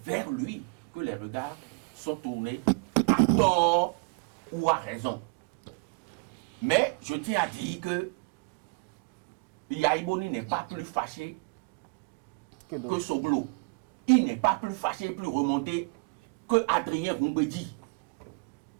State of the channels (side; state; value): left; quieter; 33.6 dB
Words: lui que les regards sont tournés à tort ou à raison. Mais je tiens à dire que Yahi Boni n'est pas plus fâché que Soglo. Il n'est pas plus fâché, plus remonté que Adrien Roumbedi.